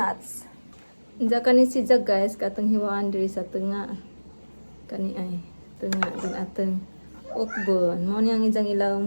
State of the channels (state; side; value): inverted; both; correlation -1.00